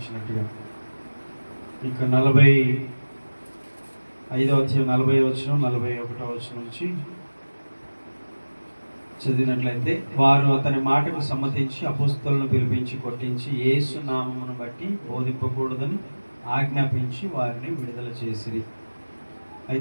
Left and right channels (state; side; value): inverted; both; correlation -1.00